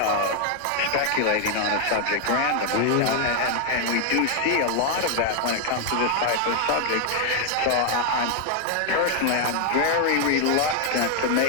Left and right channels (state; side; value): different; both; correlation 0.00